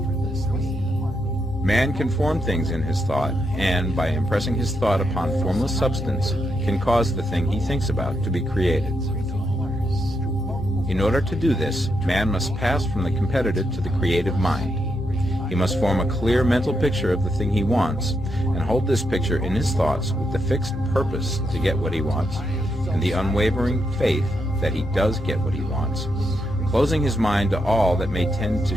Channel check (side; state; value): both; normal; correlation 0.82